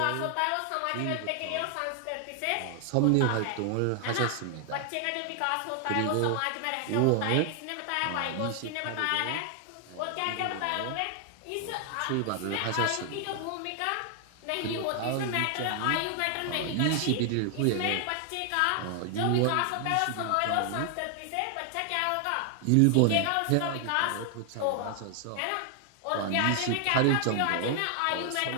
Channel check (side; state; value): both; different; correlation 0.00